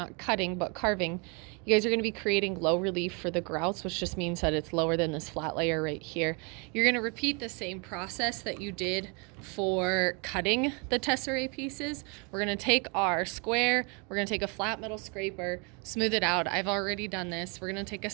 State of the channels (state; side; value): quieter; left; 32.9 dB